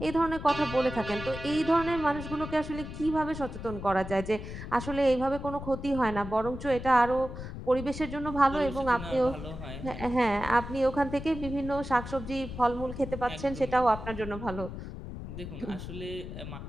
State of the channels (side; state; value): left; noise; rumble, 9 dB below the sound